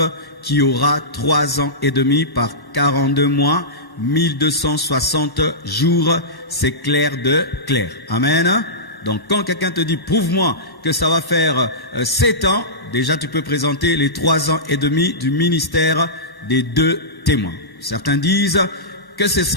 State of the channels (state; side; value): late; right; 1.1 ms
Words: qu'il y aura 3 ans et demi par 42 mois, 1260 jours, c'est clair de clair. Amen. Donc quand quelqu'un te dit, prouve-moi que ça va faire 7 ans, déjà tu peux présenter les 3 ans et demi du ministère des 2 témoins. Certains disent que ce